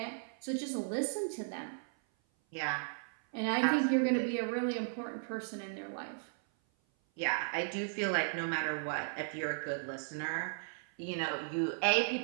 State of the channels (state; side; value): silent; left; 54 dB below the other